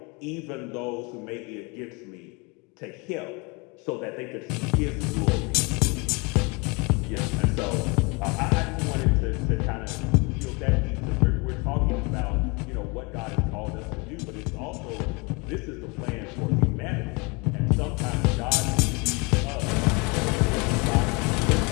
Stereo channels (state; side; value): quieter; right; 29.0 dB